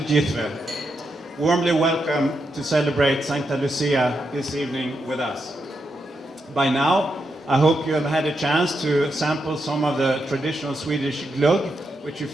Warmly welcome to celebrate Sancta Lucia this evening with us. By now, I hope you have had a chance to sample some of the traditional Swedish glögg, which you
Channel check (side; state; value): both; normal; correlation 0.83